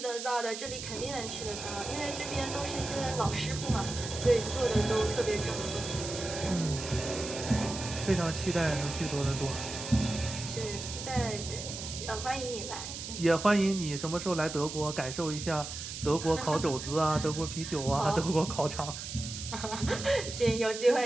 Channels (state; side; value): noise; right; hiss, 8 dB below the sound